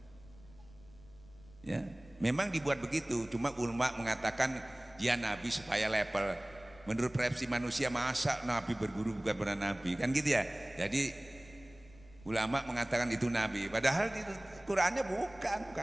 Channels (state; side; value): noise; left; rumble, 23 dB below the sound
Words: Ya, memang dibuat begitu. Cuma ulama mengatakan dia nabi supaya level. Menurut persepsi manusia, masa nabi berguru bukan benar nabi, kan gitu ya. Jadi ulama mengatakan itu nabi, padahal di Qurannya bukan